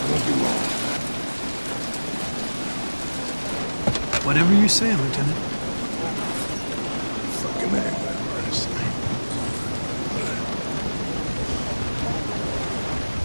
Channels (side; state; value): both; inverted; correlation -1.00